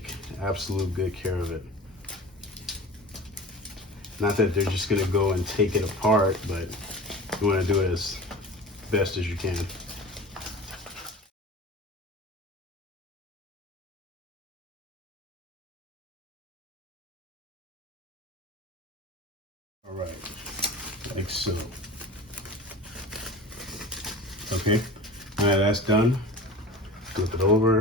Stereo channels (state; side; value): normal; both; correlation 0.36